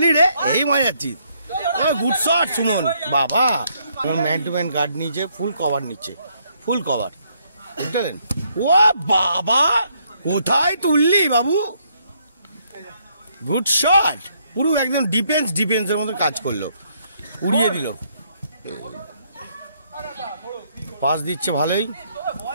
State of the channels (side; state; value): both; inverted; correlation -0.71